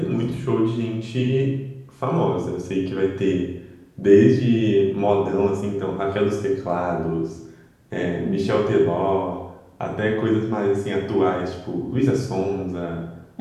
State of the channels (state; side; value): identical; both; correlation 1.00